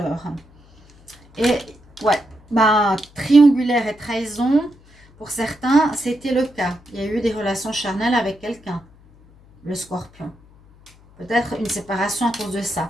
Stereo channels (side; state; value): left; noise; hum, 27 dB below the sound